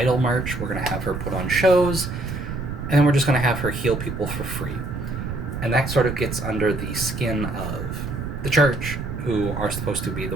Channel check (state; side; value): noise; right; rumble, 5 dB below the sound